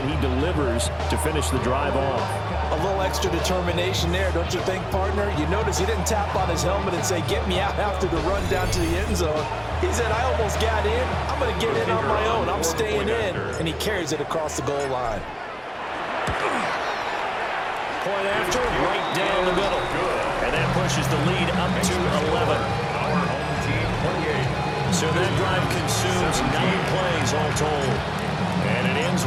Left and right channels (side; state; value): both; identical; correlation 1.00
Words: he delivers to finish the drive off. A little extra determination there, don't you think, partner? You notice he didn't tap on his helmet and say, get me out after the run down to the end zone. He said, I almost got in. I'm going to get in on my own. I'm staying in. And he carries it across the goal line. Point after, right down the middle. And that pushes the lead up to 11. So that drive consumes 9 plays all told. And it ends